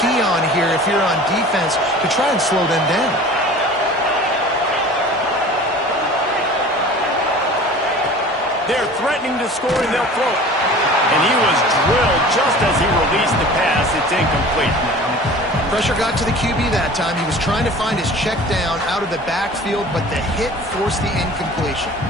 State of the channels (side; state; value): both; normal; correlation 0.42